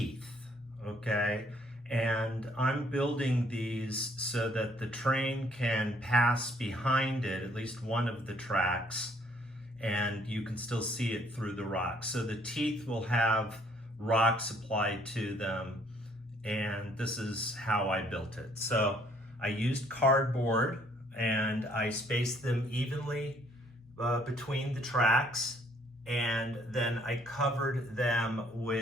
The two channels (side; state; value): both; normal; correlation 0.63